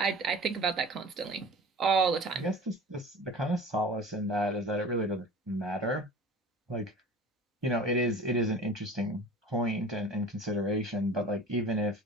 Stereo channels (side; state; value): both; normal; correlation 0.40